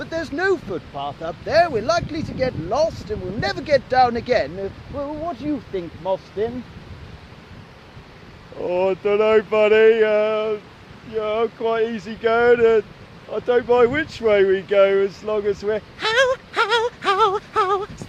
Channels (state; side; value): identical; both; correlation 1.00